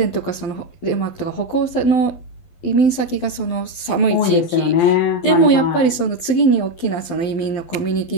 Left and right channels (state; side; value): late; right; 12 ms